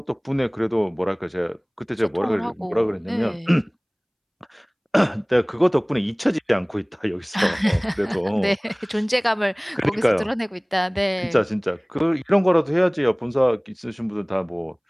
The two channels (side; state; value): both; identical; correlation 1.00